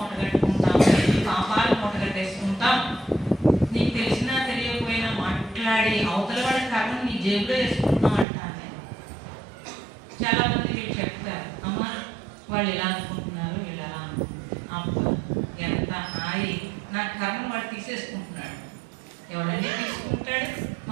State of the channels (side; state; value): left; drops out; at 8.2 s